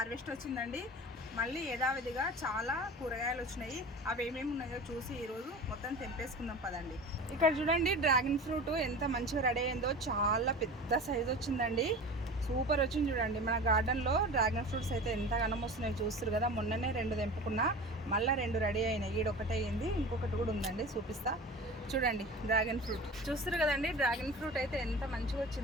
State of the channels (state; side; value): normal; both; correlation 0.35